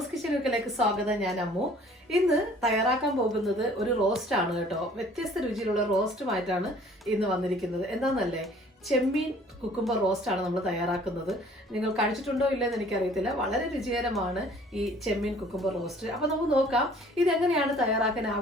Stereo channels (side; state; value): both; normal; correlation 0.54